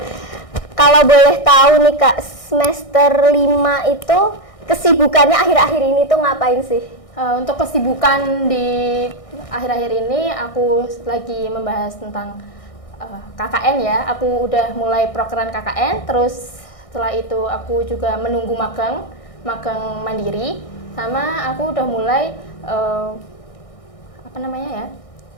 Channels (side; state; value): right; late; 1.6 ms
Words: Kalau boleh tahu nih Kak, semester 5 itu kesibukannya akhir-akhir ini tuh ngapain sih? Untuk kesibukan di akhir-akhir ini aku lagi membahas tentang KKN ya. Aku udah mulai prokeran KKN, terus setelah itu aku juga menunggu magang mandiri, sama aku udah mulai